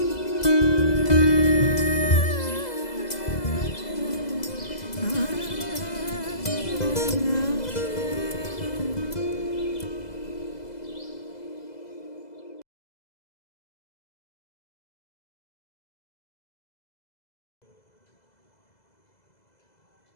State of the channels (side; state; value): right; late; 2.0 ms